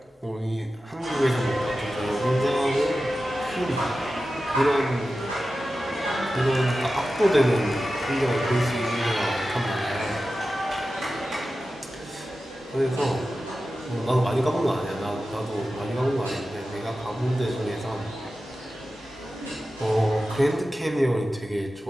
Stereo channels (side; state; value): both; normal; correlation 0.93